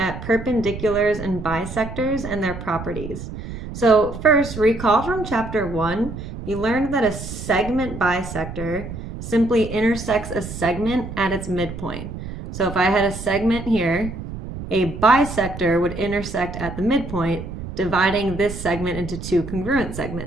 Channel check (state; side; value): noise; right; rumble, 9 dB below the sound